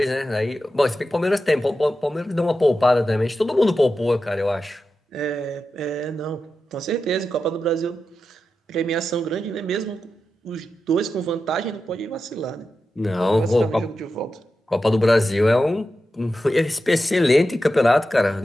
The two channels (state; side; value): normal; both; correlation 0.90